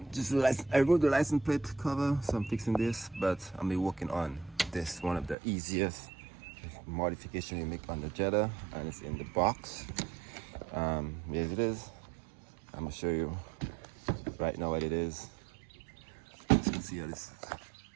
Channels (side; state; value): left; drops out; at 5.4 s